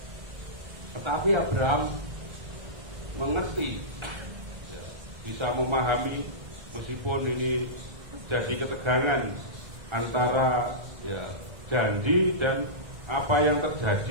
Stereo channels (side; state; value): left; late; 1.3 ms